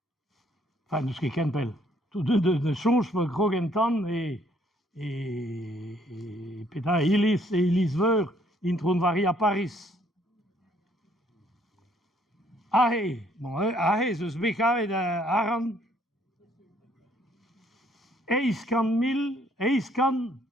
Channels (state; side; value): normal; both; correlation 0.65